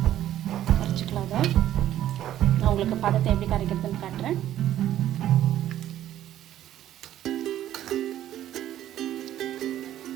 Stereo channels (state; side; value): quieter; left; 12.3 dB